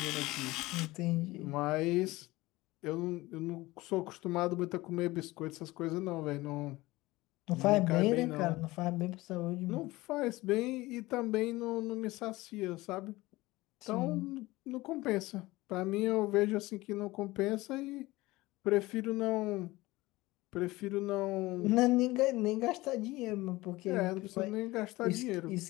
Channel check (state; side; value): quieter; right; 19.8 dB